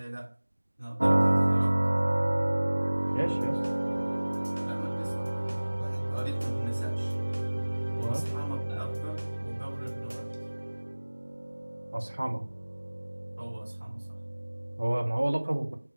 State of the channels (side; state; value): both; inverted; correlation -1.00